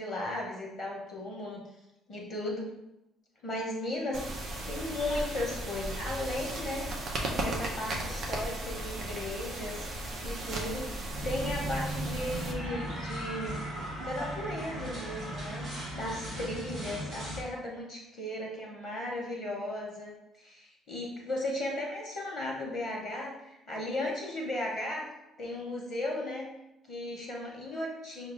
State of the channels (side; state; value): both; normal; correlation 0.67